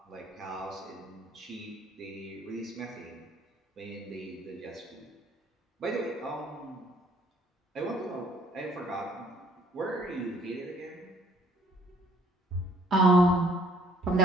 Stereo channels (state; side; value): normal; both; correlation 0.61